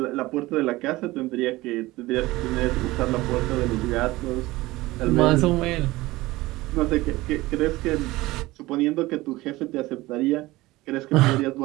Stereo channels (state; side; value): quieter; left; 19.2 dB